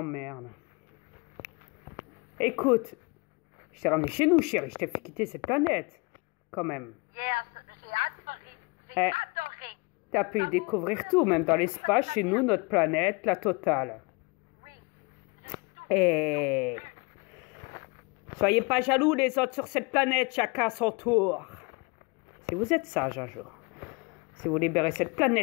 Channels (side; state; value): right; quieter; 29.1 dB